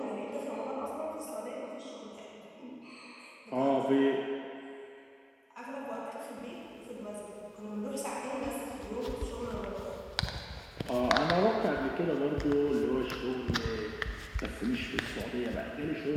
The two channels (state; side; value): identical; both; correlation 1.00